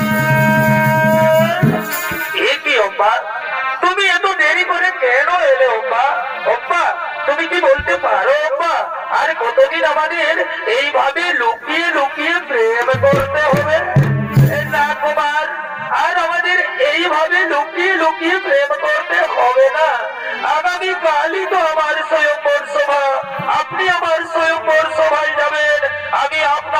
এ কি অব্বা, তুমি এত দেরি করে কেন এলে অব্বা? অব্বা, তুমি কি বলতে পারো অব্বা, আর কতদিন আমাদের এইভাবে লুকিয়ে লুকিয়ে প্রেম করতে হবে? না কুমার, আর আমাদের এইভাবে লুকিয়ে লুকিয়ে প্রেম করতে হবে না। আগামী কালই তো আমার স্বয়ংবর সভা, আপনি আমার স্বয়ংবর সভায় যাবেন। আমি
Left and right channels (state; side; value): identical; both; correlation 1.00